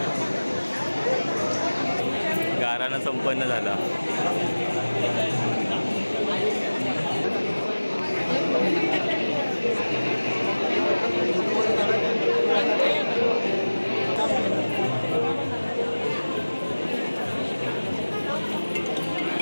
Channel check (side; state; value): both; inverted; correlation -1.00